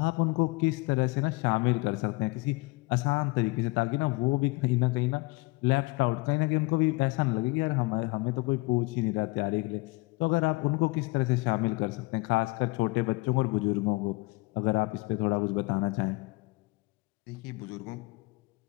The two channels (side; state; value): right; quieter; 24.9 dB